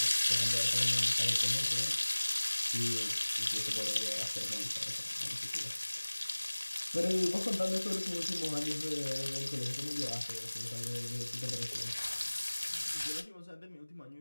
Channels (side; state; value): both; inverted; correlation -1.00